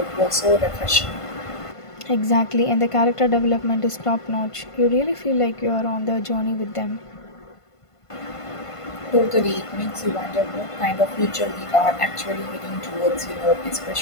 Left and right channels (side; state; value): right; late; 1.5 ms